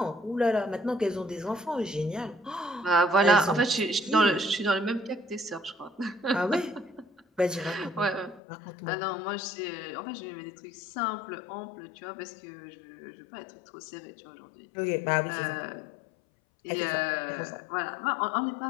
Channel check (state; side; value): drops out; right; at 8.4 s